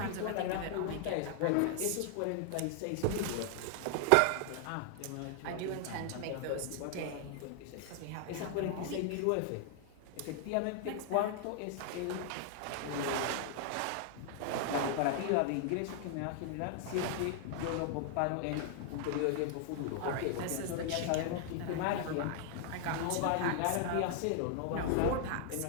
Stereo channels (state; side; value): different; both; correlation 0.00